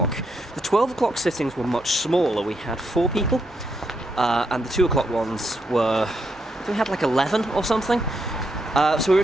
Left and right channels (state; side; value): normal; both; correlation 0.80